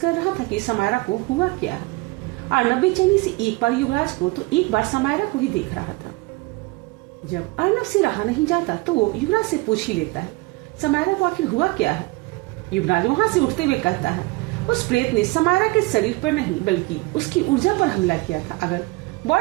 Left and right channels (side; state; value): left; quieter; 22.9 dB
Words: रहा था कि समायरा को हुआ क्या है। अर्नब बेचैनी से एक बार युवराज को तो एक बार समायरा को ही देख रहा था। जब अर्नब से रहा नहीं जाता तो वो युवराज से पूछ ही लेता है, समायरा को आखिर हुआ क्या है? युवराज वहां से उठते हुए कहता है, उस प्रेत ने समायरा के शरीर पर नहीं बल्कि उसकी ऊर्जा पर हमला किया था। अगर